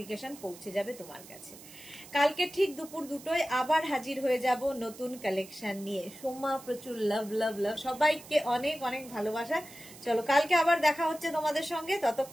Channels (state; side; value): noise; right; hiss, 18 dB below the sound